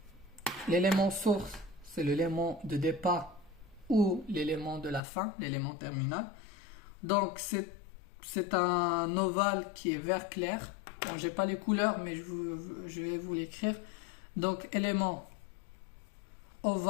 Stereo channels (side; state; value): right; drops out; at 5.0 s